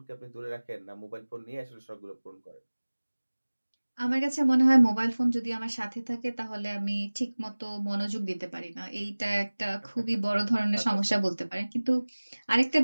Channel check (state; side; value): inverted; both; correlation -1.00